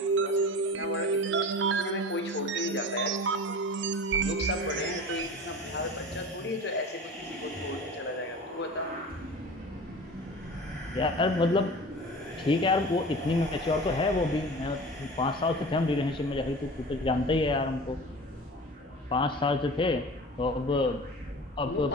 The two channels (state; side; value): normal; both; correlation 0.36